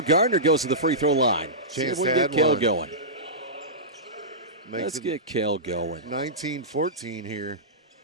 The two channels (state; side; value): normal; both; correlation -0.17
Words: Gardner goes to the free throw line. See if we can get Cale going. Let's get Cale going. 19-14 here